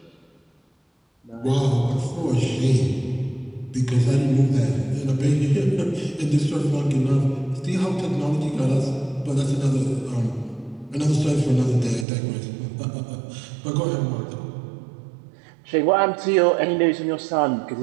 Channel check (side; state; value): left; drops out; at 12.1 s